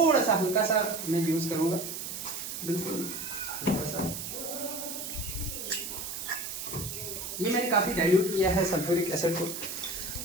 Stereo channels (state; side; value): noise; right; hiss, 6 dB below the sound